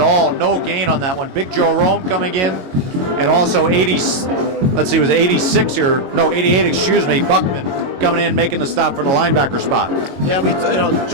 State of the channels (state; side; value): late; left; 22 ms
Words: all. No gain on that one. Big Joe Rome coming in, and also 88, excuse me, Buckman coming in, making the stop for the linebacker spot. Yeah,